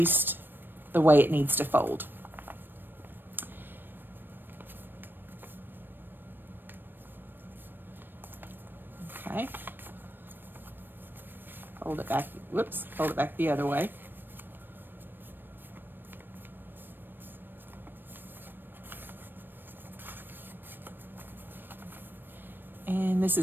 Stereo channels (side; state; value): left; late; 0.095 ms